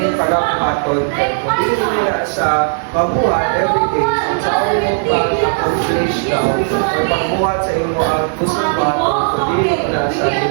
pala kumaton. Kung hindi nila sa pagbuhat everyday, so sa ako mo pa-accomplish daw or pagbuhat sa imo ang kusong baton, kung hindi na siya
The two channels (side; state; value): left; silent; digital silence